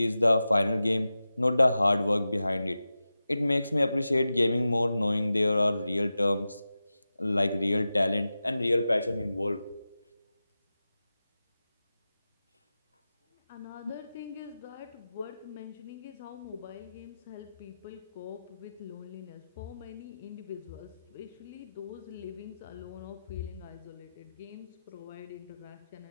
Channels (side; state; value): both; inverted; correlation -0.94